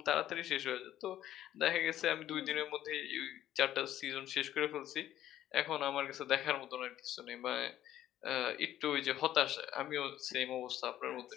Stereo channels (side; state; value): right; quieter; 12.5 dB